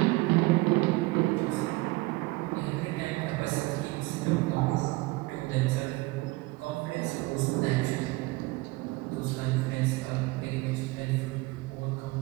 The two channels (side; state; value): left; quieter; 22.3 dB